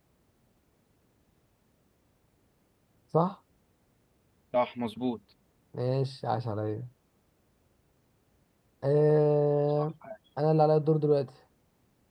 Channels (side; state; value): both; identical; correlation 1.00